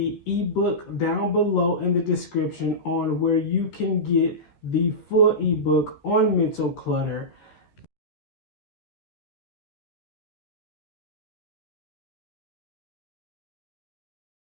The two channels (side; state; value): right; late; 13 ms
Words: ebook down below in the description on where you can get the full ebook on mental clutter.